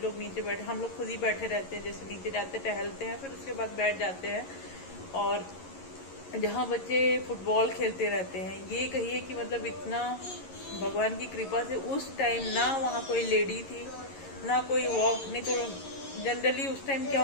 लोग नीचे बैठे, हम लोग खुद ही बैठे रहते हैं, जैसे नीचे जाते टहलते हैं, फिर उसके बाद बैठ जाते हैं, और जहाँ बच्चे फुटबॉल खेलते रहते हैं। ये कहिए कि मतलब इतना भगवान की कृपा से उस टाइम ना वहाँ कोई लेडी थी ना कोई वॉक, नहीं तो जनरली उस टाइम क्या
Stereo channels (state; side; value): late; right; 11 ms